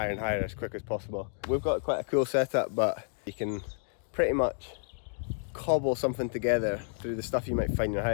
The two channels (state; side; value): silent; right; digital silence